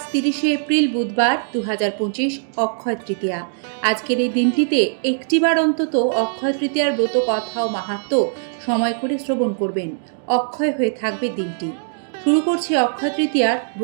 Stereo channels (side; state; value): left; silent; digital silence